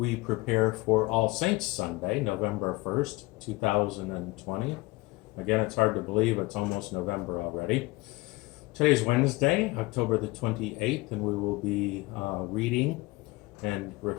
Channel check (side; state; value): right; quieter; 22.4 dB